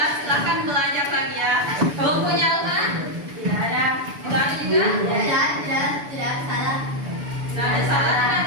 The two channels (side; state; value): left; late; 7.0 ms